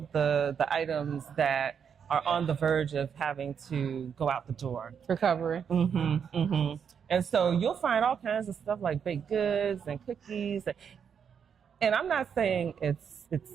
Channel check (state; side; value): quieter; left; 7.3 dB